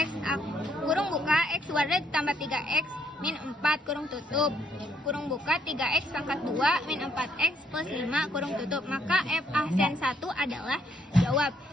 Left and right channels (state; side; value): normal; both; correlation 0.70